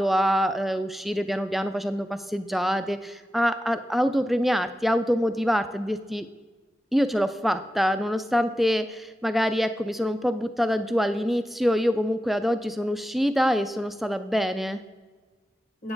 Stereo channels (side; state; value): both; normal; correlation 0.91